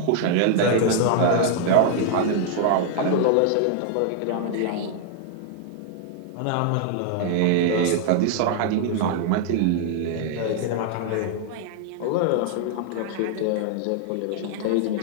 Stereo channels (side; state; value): both; different; correlation 0.00